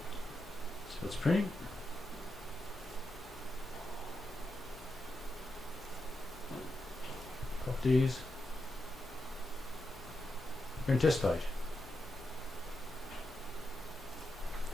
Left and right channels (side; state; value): left; noise; hum, 17 dB below the sound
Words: So it's printing. Properties. Print test page.